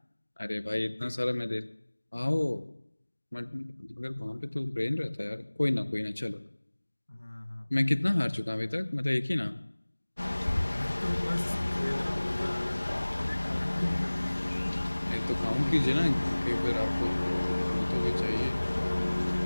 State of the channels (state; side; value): inverted; both; correlation -1.00